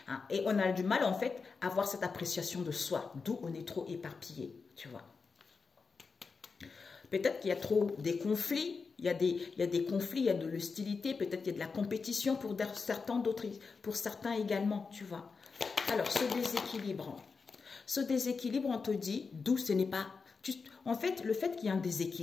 Hein. Et on a du mal, en fait, à avoir cette appréciation de soi. D'où on est trop éparpillé, tu vois. Peut-être qu'il y a trop des conflits. Il y a des conflits, il y a de l'hostilité. Peut-être qu'il y a de la compétition pour certains, d'autres, pour certains également, tu vois. Alors, ce déséquilibre, on te dit d'où ce n'est pas... En fait, le fait qu'il y ait un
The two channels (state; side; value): quieter; right; 4.9 dB